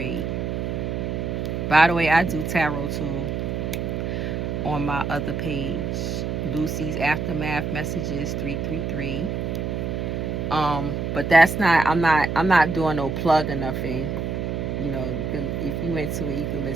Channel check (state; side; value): noise; right; hum, 2 dB below the sound